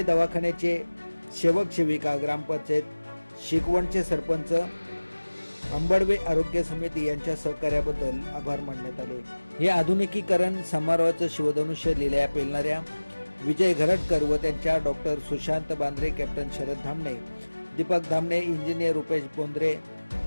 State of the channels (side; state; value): both; inverted; correlation -1.00